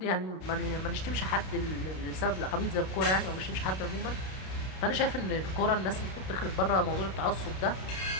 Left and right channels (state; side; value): late; right; 32 ms